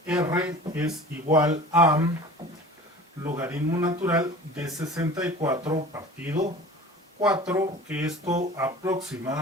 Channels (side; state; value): both; normal; correlation 0.41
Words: r es igual a logaritmo natural de 64 partido 4, que esto